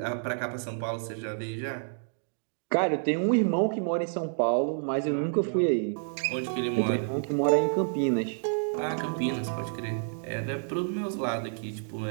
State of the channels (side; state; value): left; silent; digital silence